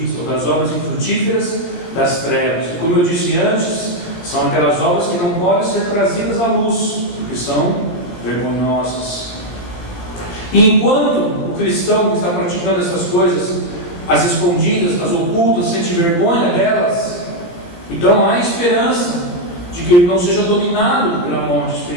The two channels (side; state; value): right; late; 18 ms